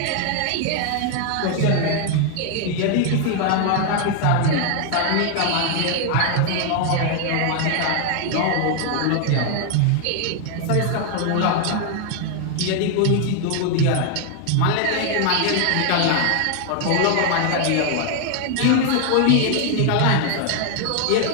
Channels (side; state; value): both; different; correlation 0.00